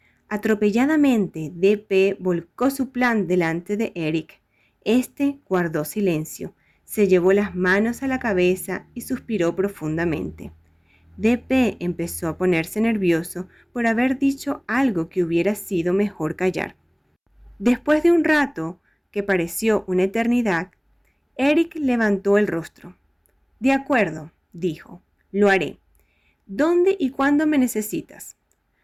Atropelladamente, DP volcó su plan delante de Eric. Este guardó silencio, se llevó las manos a la cabeza y suspiró profundamente. DP empezó a ponerse nervioso por haber dicho algo que hubiera sido mejor callar. Después de un rato, que pareció una eternidad, Eric levantó el rostro. «De acuerdo», dijo, «lo haré. ¿Dónde y cuándo me necesitas?»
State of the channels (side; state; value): both; identical; correlation 1.00